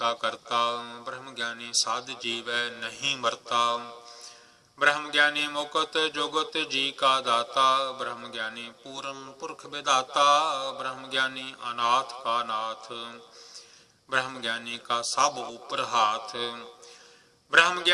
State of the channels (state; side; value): identical; both; correlation 1.00